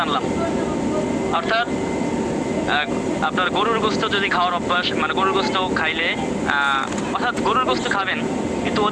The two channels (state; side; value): identical; both; correlation 1.00